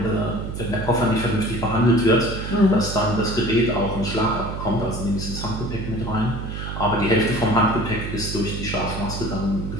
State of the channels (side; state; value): right; noise; hum, 6 dB below the sound